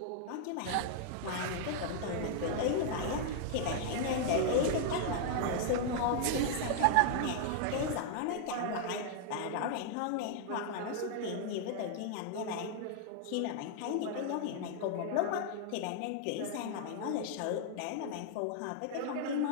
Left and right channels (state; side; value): different; both; correlation -0.01